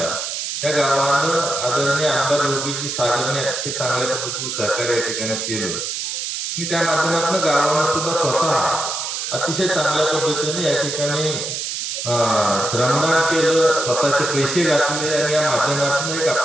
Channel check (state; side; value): noise; right; hiss, 4 dB below the sound